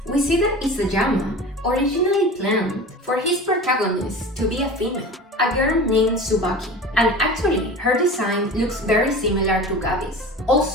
We see that Isayama originally planned for his protagonist to be a female, a girl named Tsubaki, and actually her design looks very similar to Gabi's.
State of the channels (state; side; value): normal; both; correlation 0.35